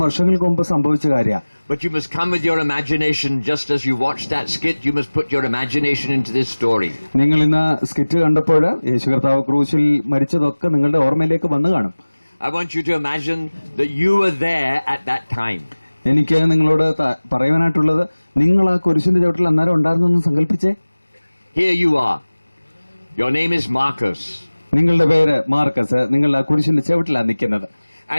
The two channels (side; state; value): both; inverted; correlation -1.00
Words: വർഷങ്ങൾക്ക് മുമ്പ് സംഭവിച്ച കാര്യമാണ്. But you must come with your imagination, just as you watched that skit, you must put your imagination into this story. നിങ്ങൾ ഇന്ന് സ്കിറ്റ് കണ്ടപ്പോൾ യേശു കർത്താവ് ക്രൂശിൽ മരിച്ചതൊക്കെ നിങ്ങളുടെ ഓർമ്മയിലേക്ക് വന്നു കാണും. I want you to imagine that you were there at that time. എനിക്ക് നിങ്ങളോട് പറയുവാനായിട്ടുള്ളത്, നിങ്ങൾ ആ കുരിശിന്റെ ചവിട്ടിൽ അന്നേരം ഉണ്ടായിരുന്നെന്ന് സങ്കല്പിച്ചേ. Here you are. Your name is Marcus. നിങ്ങളുടെ പേര് മാർക്കസ്. നിങ്ങൾ ആ കുരിശിന്റെ ചവിട്ടിലാണ് നിൽക്കുന്നത്.